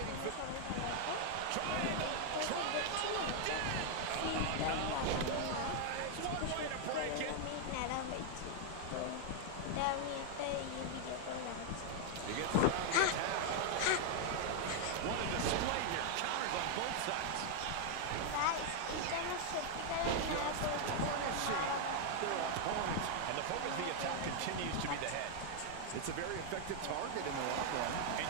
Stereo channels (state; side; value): different; both; correlation 0.00